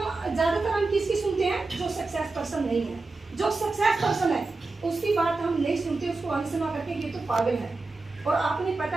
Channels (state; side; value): quieter; left; 3.6 dB